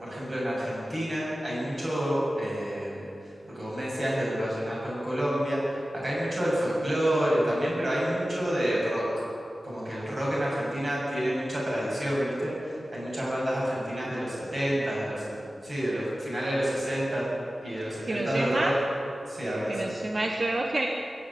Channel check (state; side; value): normal; both; correlation 0.95